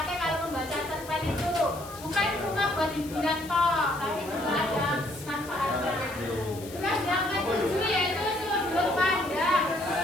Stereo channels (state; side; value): noise; left; hiss, 16 dB below the sound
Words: kalau membaca cerpen itu, bukan cuma buat hiburan toh, tapi juga ada manfaatnya. Terus yang ke-7 yaitu sudut pandang.